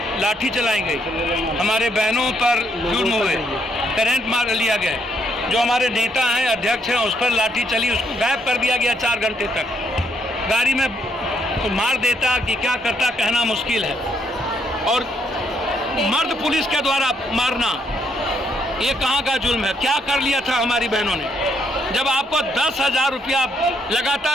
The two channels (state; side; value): normal; both; correlation 0.73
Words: लाठी चलाई गई, हमारे बहनों पर जुर्म हुए, करंट मार लिया गया, जो हमारे नेता हैं, अध्यक्ष हैं, उस पर लाठी चली, उसको गायब कर दिया गया 4 घंटे तक। गाड़ी में तो मार देता कि क्या करता कहना मुश्किल है। और मर्द पुलिस के द्वारा मारना, ये कहाँ का जुल्म है? क्या कर लिया था हमारी बहनों ने? जब आपको 10,000 रुपया